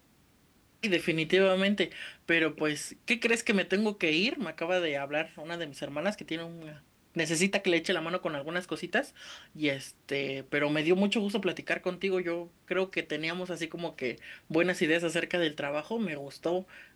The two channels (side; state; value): both; identical; correlation 1.00